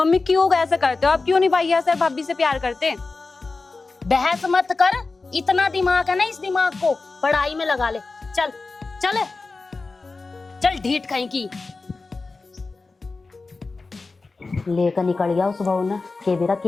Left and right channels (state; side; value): quieter; right; 3.8 dB